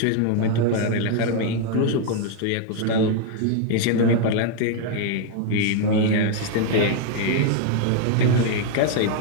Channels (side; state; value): both; different; correlation 0.00